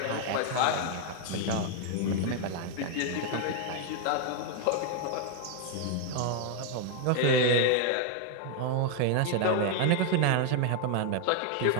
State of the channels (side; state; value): both; different; correlation 0.00